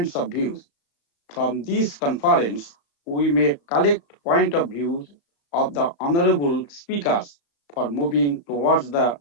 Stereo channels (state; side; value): late; right; 35 ms